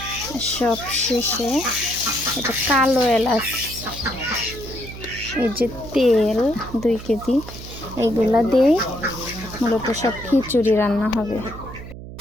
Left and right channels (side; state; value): right; noise; hum, 13 dB below the sound